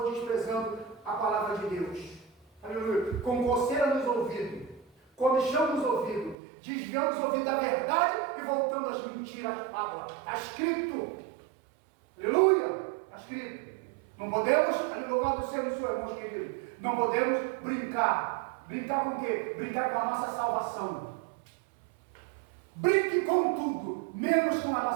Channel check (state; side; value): drops out; left; at 6.4 s